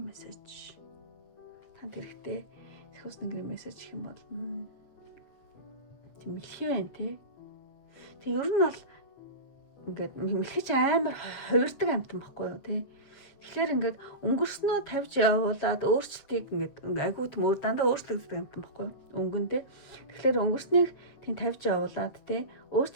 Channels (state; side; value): late; right; 7.9 ms